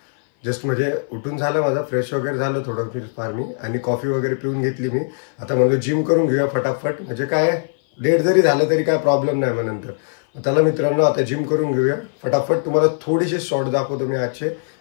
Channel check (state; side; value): silent; right; 58 dB below the other